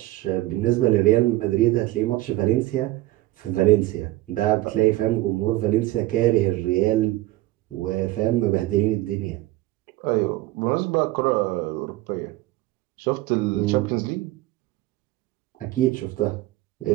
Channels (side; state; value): left; quieter; 17.6 dB